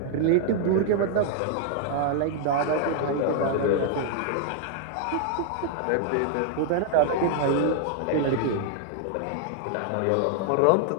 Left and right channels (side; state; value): both; different; correlation 0.00